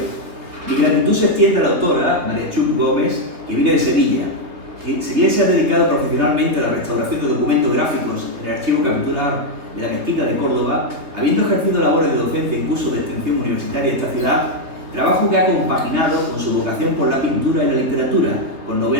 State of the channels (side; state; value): left; late; 3.3 ms